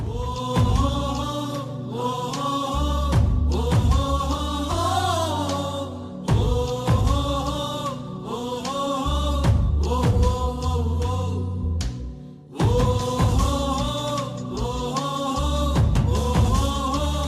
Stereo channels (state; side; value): identical; both; correlation 1.00